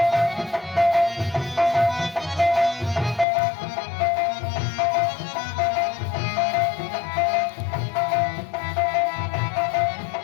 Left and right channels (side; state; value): right; drops out; at 3.2 s